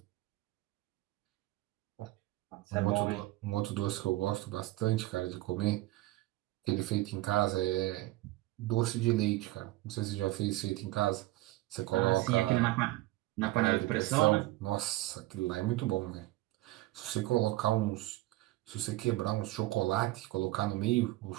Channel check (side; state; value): left; quieter; 18.0 dB